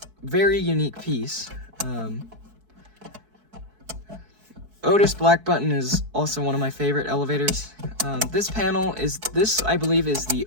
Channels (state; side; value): late; left; 4.6 ms